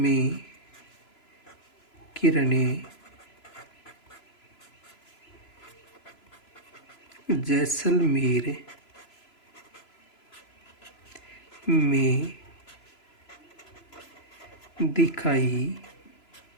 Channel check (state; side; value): late; right; 3.0 ms